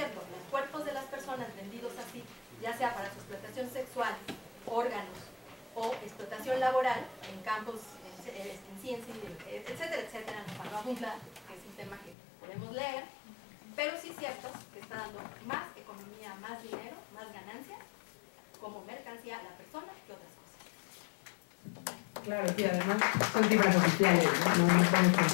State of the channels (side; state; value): right; drops out; at 12.2 s